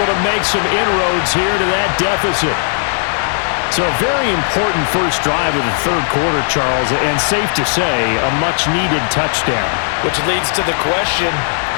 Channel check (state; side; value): silent; right; digital silence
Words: to make some inroads here to that deficit. So a very important first drive of the 3rd quarter, Charles, and safe to say, a much-needed touchdown. Which leads to the question,